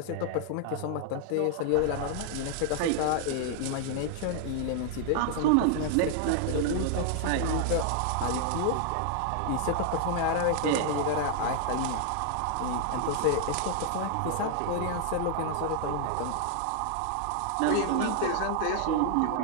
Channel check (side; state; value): both; different; correlation 0.00